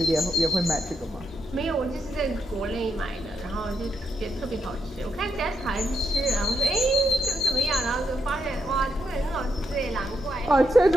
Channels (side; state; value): both; normal; correlation 0.81